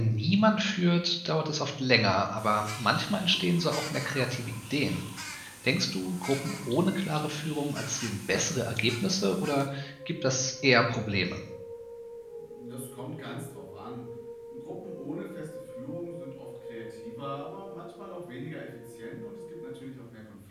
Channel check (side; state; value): both; identical; correlation 1.00